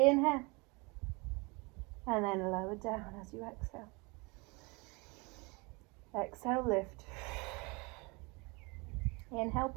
and then lower down as you exhale. Exhale, lift. Inhale,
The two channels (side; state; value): left; quieter; 27.7 dB